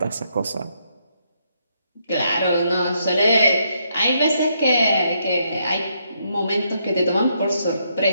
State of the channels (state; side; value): inverted; both; correlation -0.76